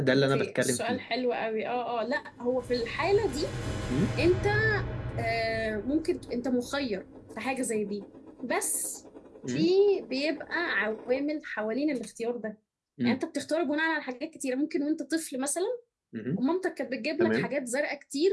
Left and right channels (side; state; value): both; identical; correlation 1.00